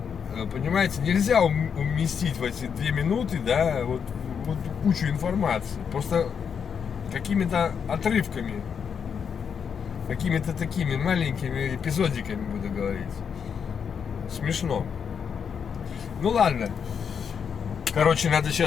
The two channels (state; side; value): quieter; right; 7.0 dB